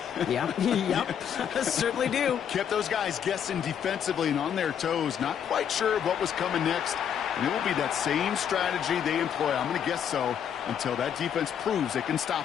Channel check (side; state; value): right; quieter; 8.6 dB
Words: Yeah, yep, certainly do. Kept those guys guessing defensively and on their toes, not quite sure of what was coming next. And it will be that same strategy they employ, I'm going to guess so, until that defense proves they can